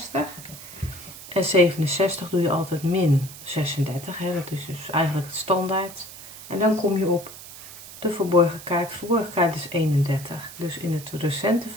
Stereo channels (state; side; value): noise; right; hiss, 15 dB below the sound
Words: En 67 doe je altijd min 36. Hè? Dat is dus eigenlijk het standaard. En dan kom je op de verborgen kaart. De verborgen kaart is 31. Dus in het recente